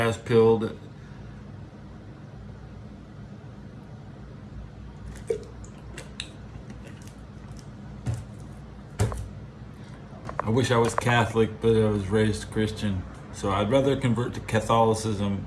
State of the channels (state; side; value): identical; both; correlation 1.00